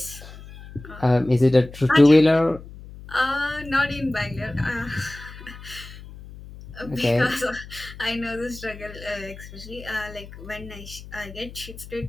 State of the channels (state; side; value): noise; left; hum, 16 dB below the sound